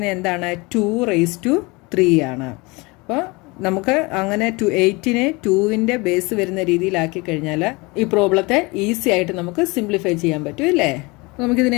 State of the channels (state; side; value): quieter; right; 25.4 dB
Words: എന്താണ്? 2 raised to 3 ആണ്. അപ്പോൾ നമുക്ക് അങ്ങനെ 8നെ 2ന്റെ ബേസ് വരുന്ന രീതിയിലാക്കി കഴിഞ്ഞാൽ ഈ പ്രോബ്ലത്തെ ഈസി ആയിട്ട് നമുക്ക് സിംപ്ലിഫൈ ചെയ്യാൻ പറ്റും അല്ലേ?